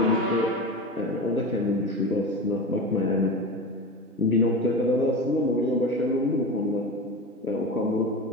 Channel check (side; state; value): both; normal; correlation 0.27